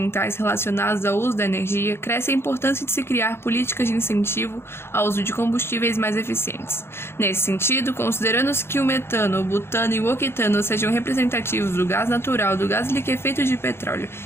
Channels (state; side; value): late; right; 0.12 ms